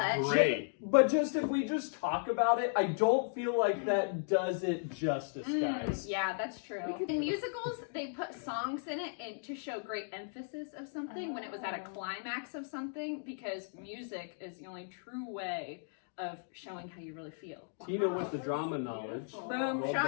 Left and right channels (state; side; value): silent; right; digital silence